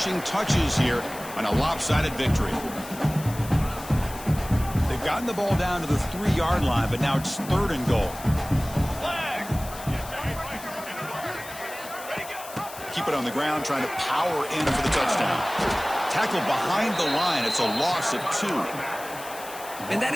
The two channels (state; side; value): noise; left; hiss, 14 dB below the sound